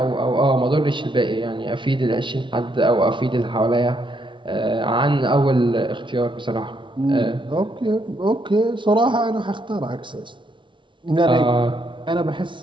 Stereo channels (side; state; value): left; late; 0.24 ms